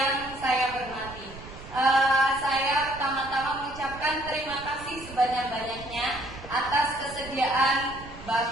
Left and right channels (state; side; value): noise; right; rumble, 16 dB below the sound